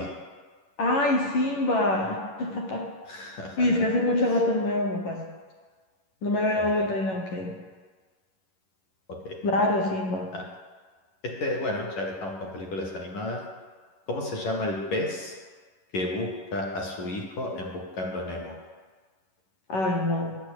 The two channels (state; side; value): late; right; 11 ms